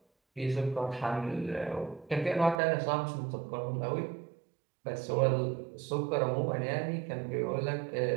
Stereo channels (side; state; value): left; drops out; at 2.6 s